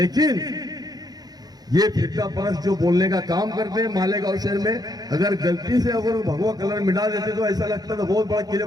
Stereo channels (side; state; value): left; late; 0.19 ms